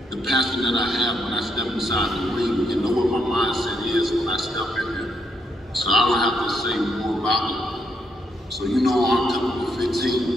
the passion that I have when I step inside the ring. You know what my mindset is when I step in there. So I don't have to say more about it. So you know October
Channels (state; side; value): normal; both; correlation 0.77